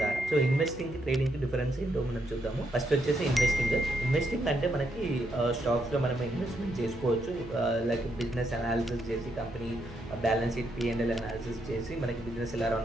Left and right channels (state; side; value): noise; right; hum, 18 dB below the sound